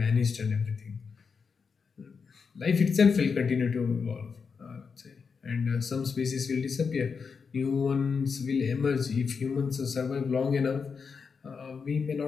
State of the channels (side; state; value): right; quieter; 5.6 dB